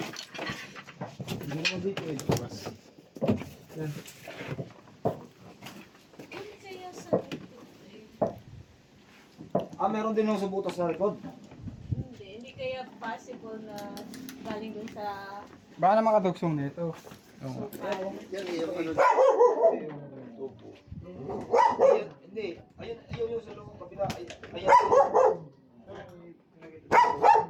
Hindi naman dito eh. Bukas. Yan. Hindi kaya sa Ah, meron din yung sa butas sa likod. Hindi kaya possible na galing dun sa Baka na makadugsong nito. Oo. Yan, yung ano. Tubo. Ayun, hindi. Ayun, ayun yung sa loob kabila. Ayan.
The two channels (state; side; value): identical; both; correlation 1.00